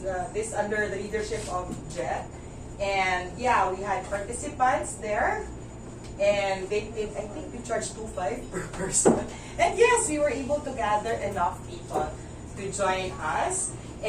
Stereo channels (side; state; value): both; identical; correlation 1.00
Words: this under the leadership of Jet. And yeah, we had participants there. And I think we charged $2.5 per person. And yes, we were able to gather enough people to join us.